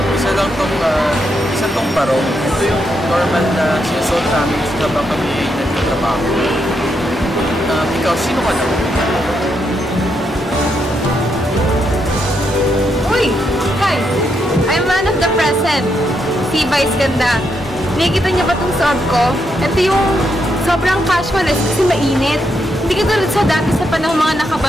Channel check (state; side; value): normal; both; correlation 0.80